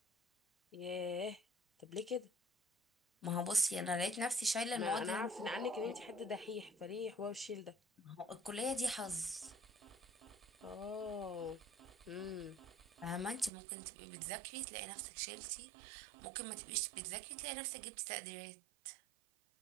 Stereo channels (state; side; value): drops out; left; at 13.5 s